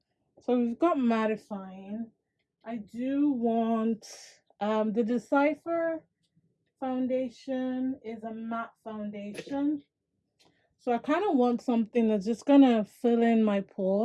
So we've got mattifying. I do want the Decipher foundation is a matte foundation. So I kind of want something that's just gonna fill in my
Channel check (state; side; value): identical; both; correlation 1.00